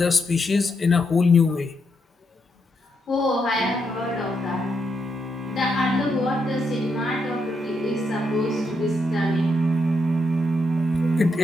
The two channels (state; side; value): normal; both; correlation 0.80